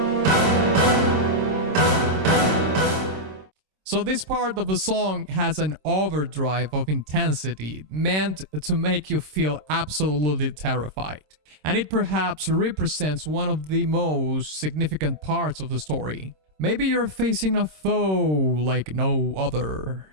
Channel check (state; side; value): late; left; 26 ms